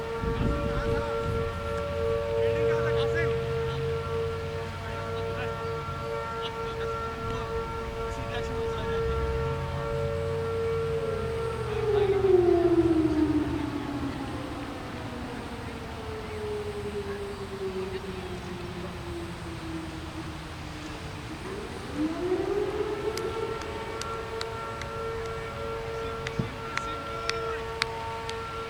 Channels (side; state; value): both; identical; correlation 1.00